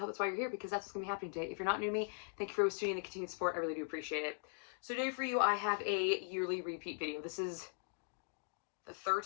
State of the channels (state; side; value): silent; right; digital silence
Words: that's why you're here, because that's what's going to be happening today. If you're not new to me, thank you for always tuning in and continued support. I really do appreciate it. So today for you, I have a yearly repeat video. This is the third